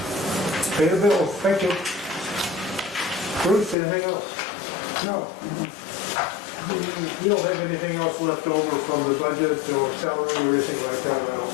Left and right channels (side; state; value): right; drops out; at 3.8 s